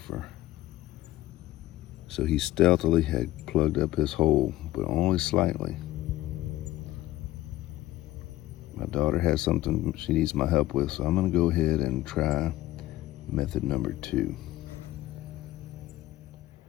So he stealthily had plugged up his hole, but only slightly. My daughter has something she needs my help with, so I'm gonna go ahead and try method number 2.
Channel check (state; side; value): quieter; right; 15.8 dB